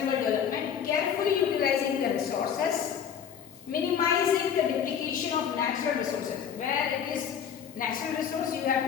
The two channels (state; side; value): quieter; right; 8.1 dB